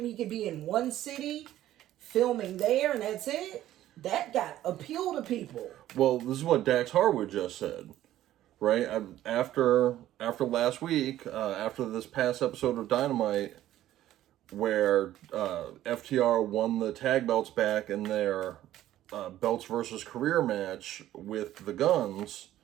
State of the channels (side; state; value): left; quieter; 13.4 dB